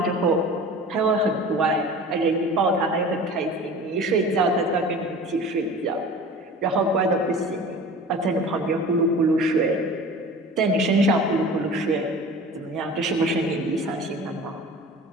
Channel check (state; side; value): normal; both; correlation 0.39